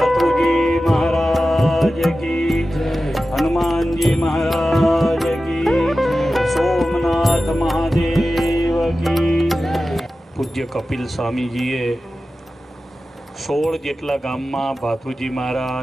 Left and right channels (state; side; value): normal; both; correlation 0.94